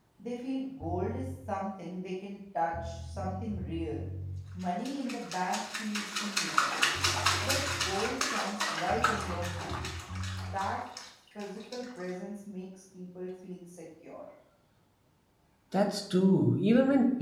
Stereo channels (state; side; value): identical; both; correlation 1.00